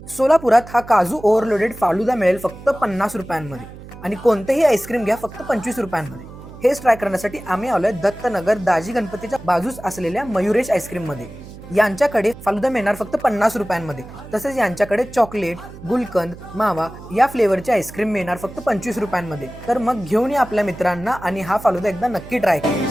सोलापुरात हा काजू ओव्हरलोडेड फालुदा मिळेल फक्त 50 रुपयांमध्ये आणि कोणतेही आईस्क्रीम घ्या फक्त 25 रुपयांमध्ये. हेच ट्राय करण्यासाठी आम्ही आलोय दत्तनगर दाजी गणपतीच्या बाजूस असलेल्या मयुरेश आईस्क्रीम मध्ये. यांच्याकडे फालुदा मिळणार फक्त 50 रुपयांमध्ये. तसेच यांच्याकडे चॉकलेट, गुलकंद, मावा या फ्लेवरचे आईस्क्रीम मिळणार फक्त 25 रुपयांमध्ये. तर मग घेऊन या आपल्या मित्रांना आणि हा फालुदा एकदा नक्की ट्राय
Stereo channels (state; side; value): noise; right; hum, 16 dB below the sound